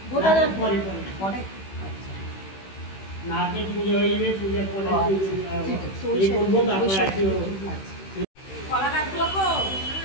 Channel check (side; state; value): right; late; 16 ms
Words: পরে নারকেল পুজো হয়ে যাবে, পূজার পরে এই করবো, তারপর আছে কলা গাছগুলো কো